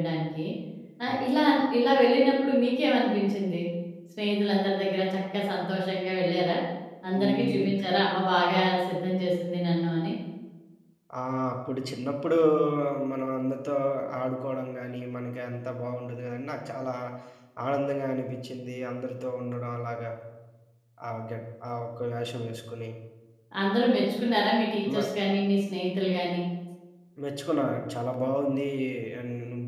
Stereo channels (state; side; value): identical; both; correlation 1.00